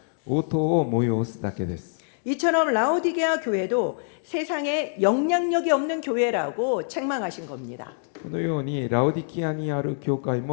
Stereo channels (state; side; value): silent; right; 62 dB below the other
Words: 応答を催すだけです。 이처럼 라오디게아 교회도 세상에 영향력이 없는 교회라고 책망하신 겁니다. このようにラオディキアにある教会